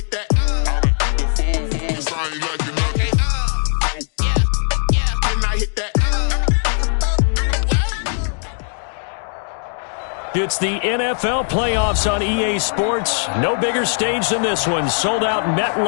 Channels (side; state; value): right; silent; 66 dB below the other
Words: that. Sorry, like you know. Okay, yeah, and I hit that. It's the NFL playoffs on EA Sports. No bigger stage than this one. Sold out